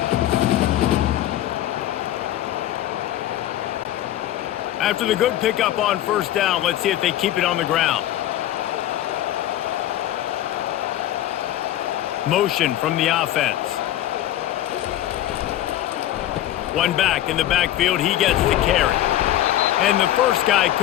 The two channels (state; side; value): quieter; right; 13.1 dB